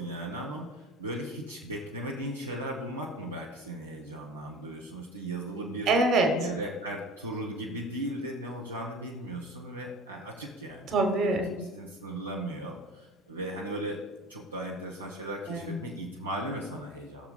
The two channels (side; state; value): both; normal; correlation 0.37